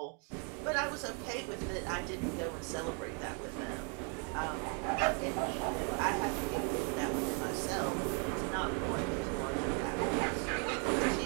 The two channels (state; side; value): quieter; left; 39.0 dB